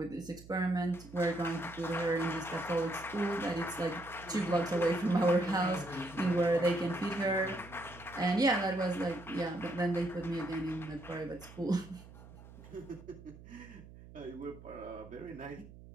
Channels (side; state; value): right; noise; hum, 18 dB below the sound